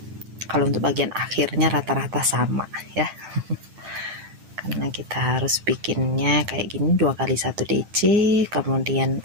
Kalau untuk bagian akhirnya rata-rata sama ya. Karena kita harus bikinnya kayak gini, 2 kali 1 DC, kemudian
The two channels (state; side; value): late; left; 9.1 ms